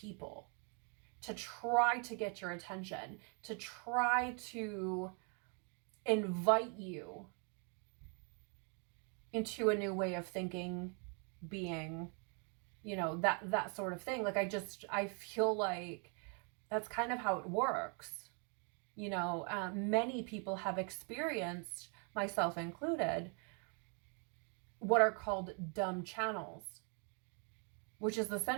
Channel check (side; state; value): left; quieter; 38.2 dB